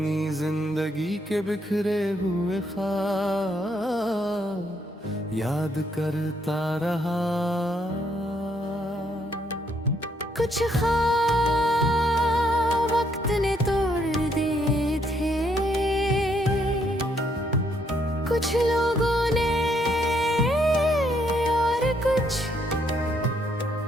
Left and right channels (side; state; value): both; normal; correlation 0.72